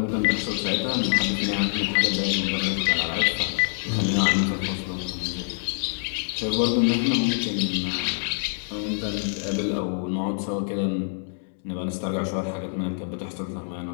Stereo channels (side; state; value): right; silent; digital silence